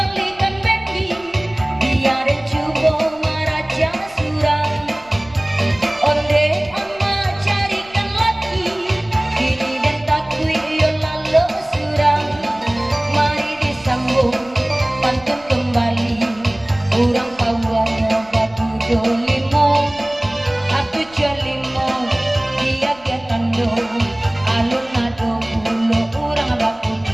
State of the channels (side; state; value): left; noise; rumble, 25 dB below the sound